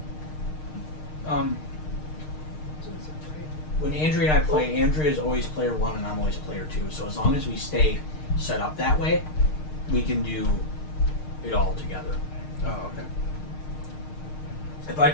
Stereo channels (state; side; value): late; right; 6.5 ms